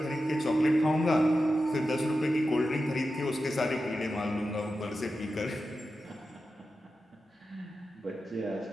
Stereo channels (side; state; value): both; normal; correlation 0.91